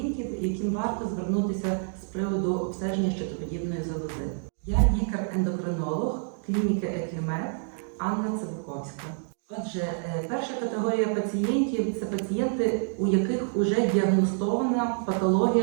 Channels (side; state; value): left; silent; 60 dB below the other